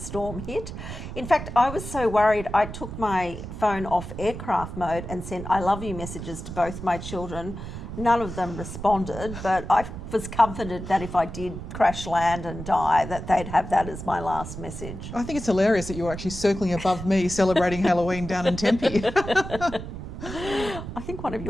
hit. In fact, I was so worried I took my phone off aircraft mode and sent I love you messages to both my children. None of them responded, but I was comforted that if I did crash land and die, that they'd have that as my last message. I think it's hilarious that you're actually circling above me celebrating Halloween down in Tempe. I think one of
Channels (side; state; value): right; noise; rumble, 9 dB below the sound